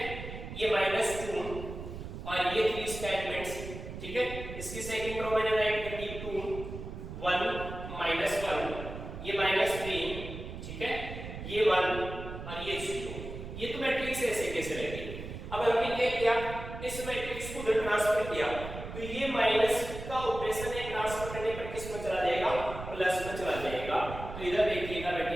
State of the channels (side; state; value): right; noise; rumble, 9 dB below the sound